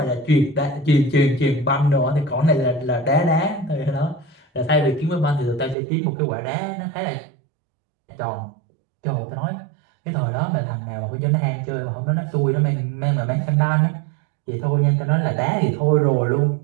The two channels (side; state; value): left; drops out; at 5.8 s